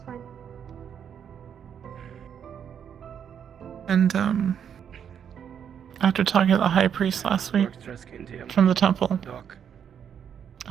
fine. And after talking to the high priest last week Works dress skin to you. from the temple, Doc.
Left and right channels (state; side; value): quieter; left; 8.3 dB